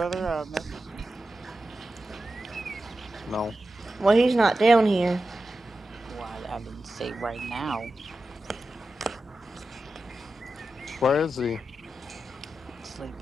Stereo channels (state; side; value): normal; both; correlation 0.92